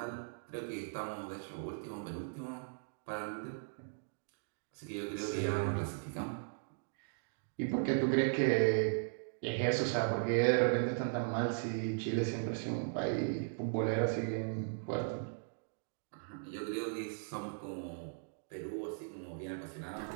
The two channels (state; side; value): silent; left; digital silence